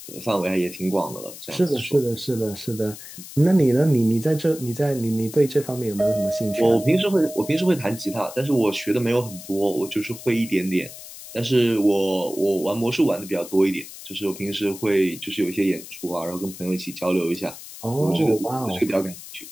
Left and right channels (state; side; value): noise; left; hiss, 14 dB below the sound